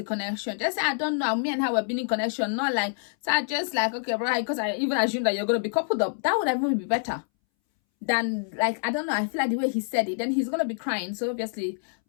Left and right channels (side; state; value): right; silent; 60 dB below the other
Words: connection. Just say, I don't know. Me and her were being in connection. Not like, so I just like, okay, bro, because I even assume that you're going to be coupled up. That would even be better than, like, I don't know. I feel like the way he said it, then he's going to be crying. So obviously